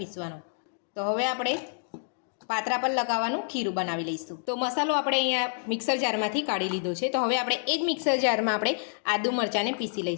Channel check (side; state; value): right; silent; digital silence